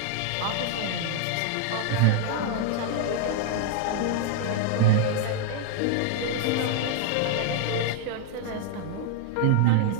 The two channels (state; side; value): different; both; correlation 0.00